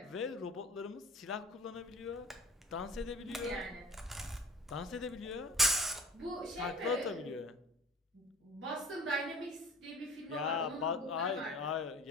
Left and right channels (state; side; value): normal; both; correlation 0.44